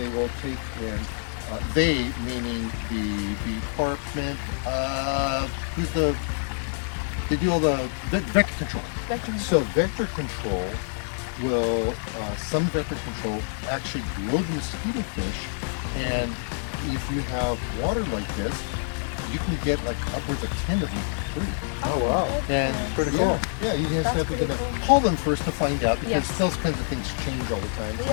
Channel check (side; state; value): right; silent; digital silence